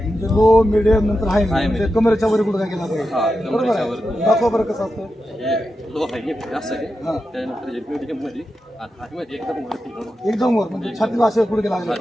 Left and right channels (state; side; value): normal; both; correlation 0.90